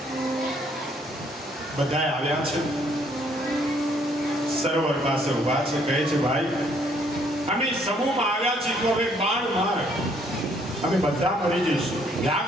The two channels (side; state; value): both; normal; correlation 0.66